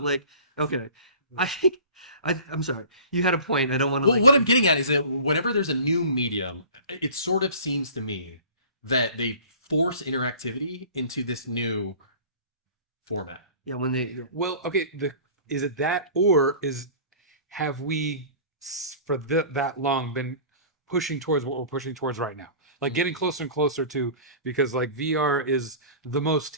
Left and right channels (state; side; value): inverted; both; correlation -0.42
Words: okay, I think I'm sorry, you had a point. I don't want to. Well, what I'm getting at is that whenever there's a new medium, it sort of seems to me that they force interactivity into this new format. Yeah, when they. Yeah. Well, okay, is it that, or have we for that long been pushing towards what we're pushing towards right now? Like getting closer and closer to, because like VR is the most